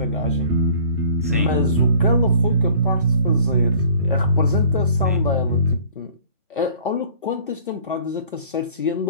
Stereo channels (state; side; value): inverted; both; correlation -0.52